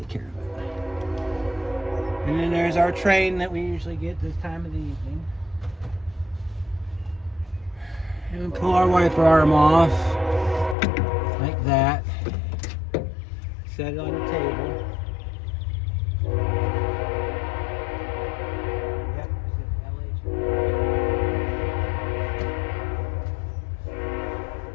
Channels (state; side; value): drops out; right; at 10.8 s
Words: care of it. And then there's our train that we usually get this time of the evening. And we pull our wiper arm off like that. Set it on the table.